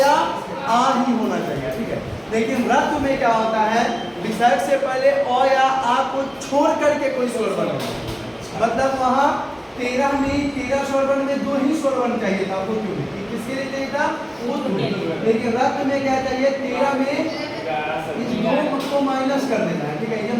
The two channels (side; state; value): both; identical; correlation 1.00